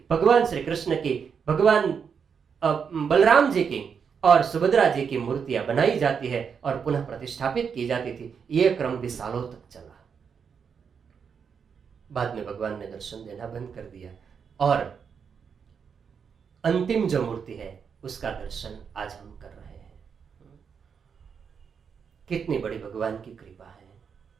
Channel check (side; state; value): left; quieter; 6.6 dB